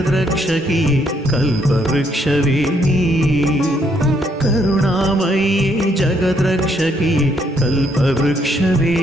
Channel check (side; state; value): both; normal; correlation 0.71